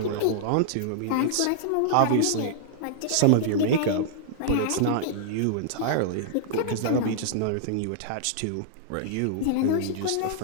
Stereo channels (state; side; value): different; both; correlation -0.01